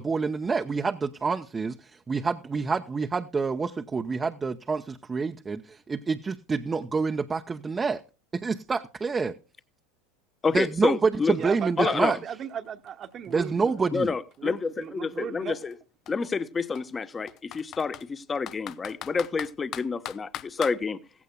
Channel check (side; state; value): both; normal; correlation 0.86